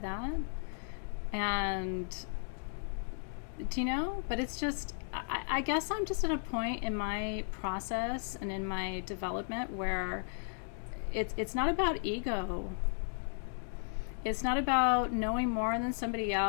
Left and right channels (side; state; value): right; silent; digital silence